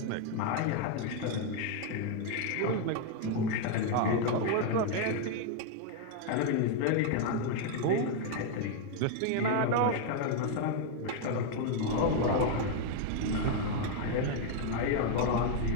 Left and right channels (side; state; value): both; different; correlation 0.00